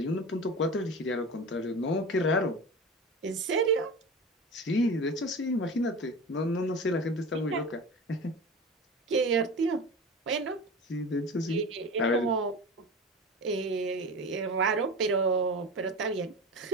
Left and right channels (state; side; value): normal; both; correlation 0.30